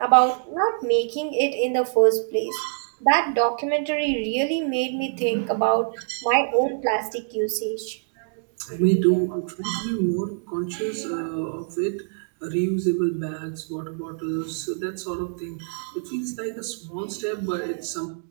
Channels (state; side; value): silent; left; digital silence